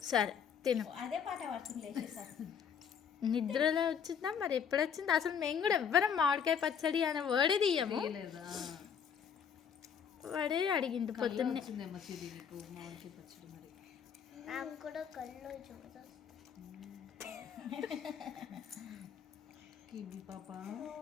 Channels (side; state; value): right; quieter; 7.4 dB